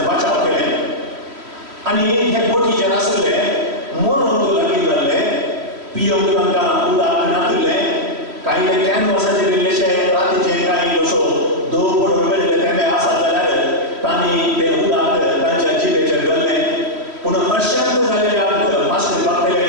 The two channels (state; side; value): late; left; 3.1 ms